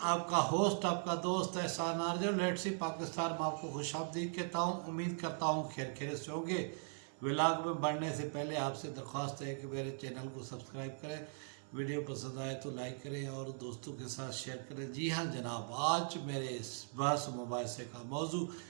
आपका होस्ट आपका दोस्त एहसान आरजू लेट्स सी पाकिस्तान में आपको खुशामदीद कहता हूँ। उम्मीद करता हूँ खैर खैरियत से होंगे। व्लॉग में बढ़ने से पहले आपसे दरख्वास्त है कि मेरे चैनल को सब्सक्राइब करें, वीडियो पसंद आए तो लाइक करें और दोस्तों के साथ शेयर करें। जी हाँ जनाब, आज मेरे इस बहस मुबाहिसे का मौजू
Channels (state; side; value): silent; left; 51 dB below the other